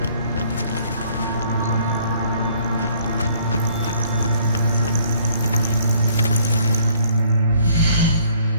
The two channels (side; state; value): both; inverted; correlation -0.61